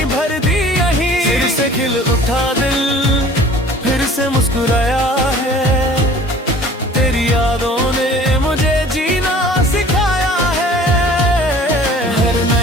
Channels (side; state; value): both; normal; correlation 0.48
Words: भर दी यहीं। फिर से खिल उठा दिल, फिर से मुस्कुराया है, तेरी यादों ने मुझे जीना सिखाया है। हर